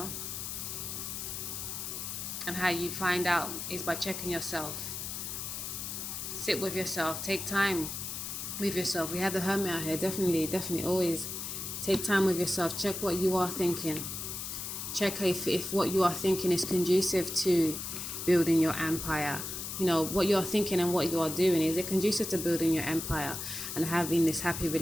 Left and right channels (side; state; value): left; noise; hiss, 6 dB below the sound